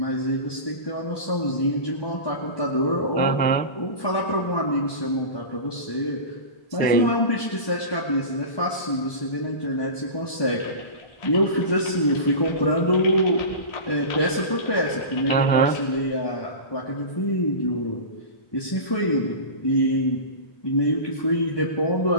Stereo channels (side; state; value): right; late; 1.0 ms